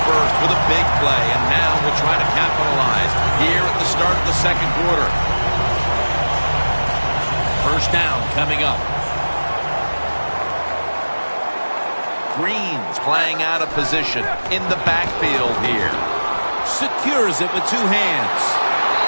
first with a big play, and now will try to capitalize here at the start of the second quarter. First down coming up. Green's playing out of position in the backfield here. Secures it with two hands.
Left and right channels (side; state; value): both; inverted; correlation -1.00